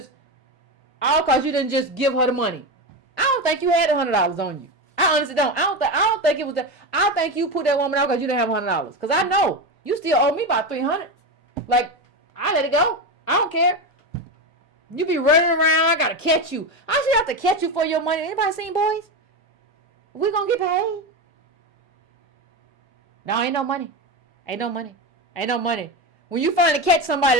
just give her the money. I don't think you had $100 on you. I honestly don't. I don't think it was that. I think you put that woman out because you didn't have $100. Because I know. You still owe me about $300. Like, I let it go. I don't care. You be running around. I gotta catch you. I should have to catch you for your money. Anybody seen Boys? We gonna get paid? No, ain't no money. Ain't no money. When you finally catch somebody,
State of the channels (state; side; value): normal; both; correlation 0.16